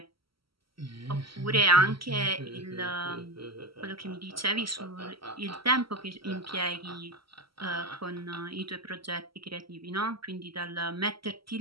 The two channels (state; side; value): late; left; 0.75 ms